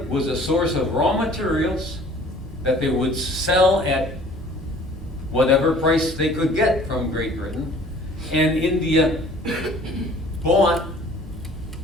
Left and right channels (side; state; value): both; normal; correlation 0.51